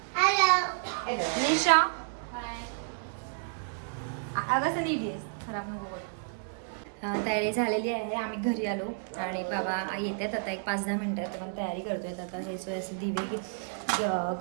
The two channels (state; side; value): silent; left; digital silence